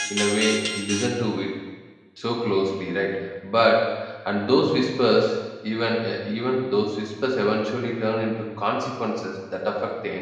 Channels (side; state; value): both; identical; correlation 1.00